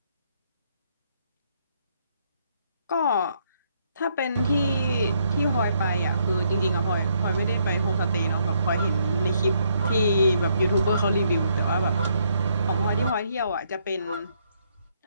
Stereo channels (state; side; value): inverted; both; correlation -0.72